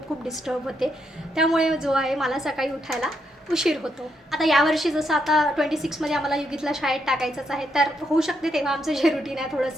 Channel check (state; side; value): normal; both; correlation 0.78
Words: खूप डिस्टर्ब होते। त्यामुळे जो आहे मला सकाळी उठायला उशीर होतो। आता यावर्षी जसं आता 26मध्ये आम्हाला युगीतला शाळेत टाकायचंच आहे, तर होऊ शकते तेव्हा आमचं जे रुटीन आहे